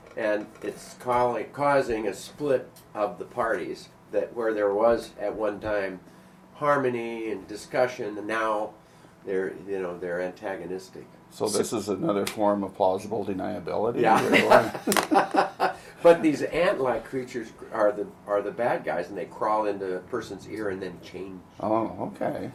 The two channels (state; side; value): identical; both; correlation 1.00